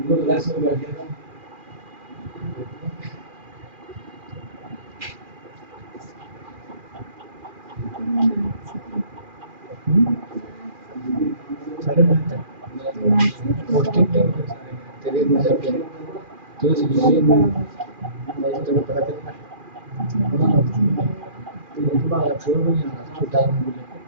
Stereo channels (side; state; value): left; late; 2.4 ms